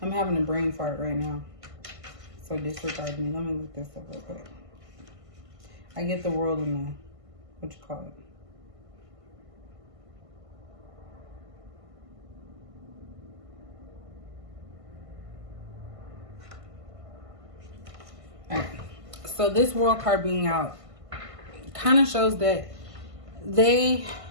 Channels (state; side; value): late; left; 1.5 ms